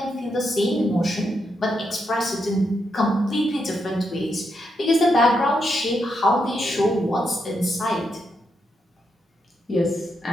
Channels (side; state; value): both; normal; correlation 0.82